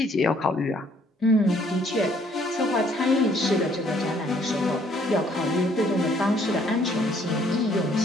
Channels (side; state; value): both; normal; correlation 0.64